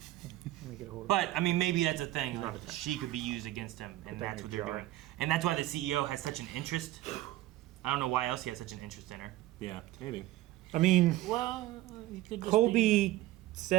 me get a hold of But, I mean, maybe that's a thing. Like, she could be used against him, and that's what they're doing. And that's why the CEO has such an interest. I don't know why else he has such an interest in her. Yeah, maybe. I mean, well, Colby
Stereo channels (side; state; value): left; quieter; 15.9 dB